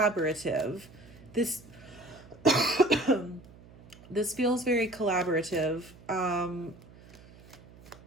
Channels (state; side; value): noise; right; hum, 22 dB below the sound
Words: This feels very collaborative.